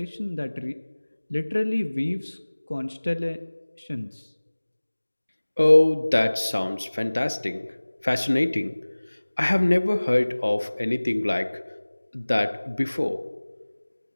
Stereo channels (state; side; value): inverted; both; correlation -1.00